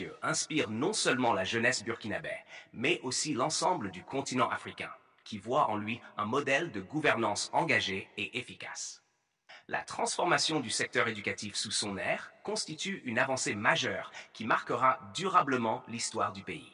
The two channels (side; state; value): both; identical; correlation 1.00